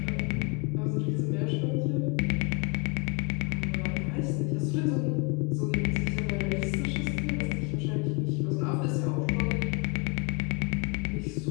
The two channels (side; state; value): right; quieter; 31.5 dB